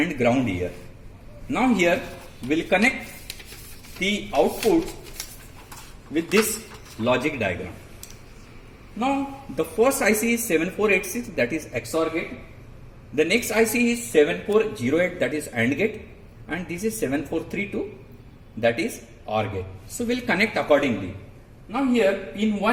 ground here. Now here we'll connect the output with this logic diagram. Now the first IC is 7486, that is XOR gate. The next IC is 7408, that is AND gate, and this is 7432, that is OR gate. So we'll connect accordingly. Now here pin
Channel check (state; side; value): identical; both; correlation 1.00